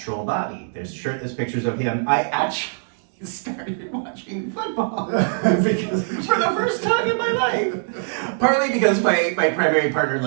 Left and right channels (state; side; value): silent; left; digital silence